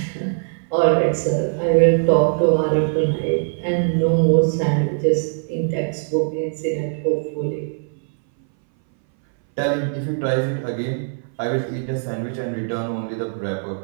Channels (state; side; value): silent; left; 61 dB below the other